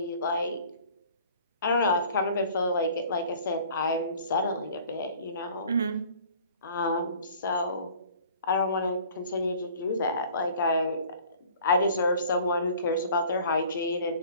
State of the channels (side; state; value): both; inverted; correlation -0.50